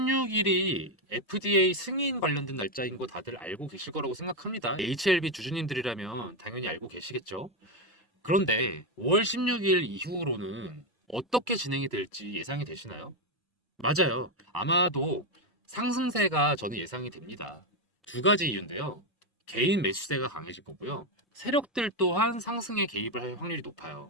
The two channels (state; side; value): normal; both; correlation 0.06